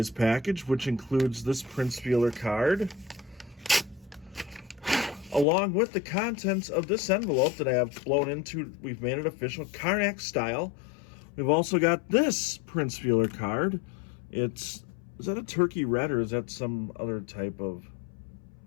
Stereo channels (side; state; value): right; drops out; at 5.5 s